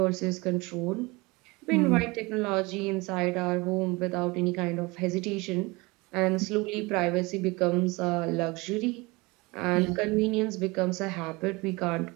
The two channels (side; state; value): left; quieter; 24.4 dB